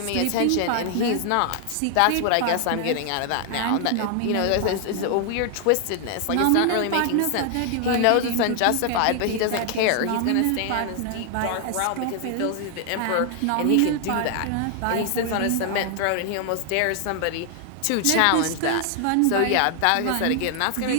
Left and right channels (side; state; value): both; different; correlation 0.00